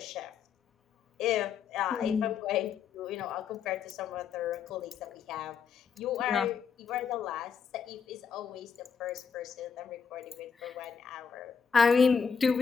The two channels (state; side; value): quieter; right; 6.4 dB